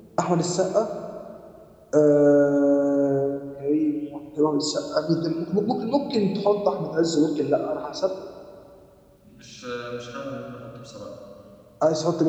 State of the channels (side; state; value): both; identical; correlation 1.00